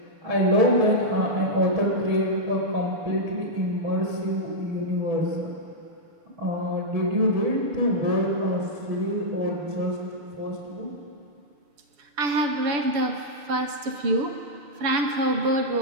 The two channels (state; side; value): late; left; 6.9 ms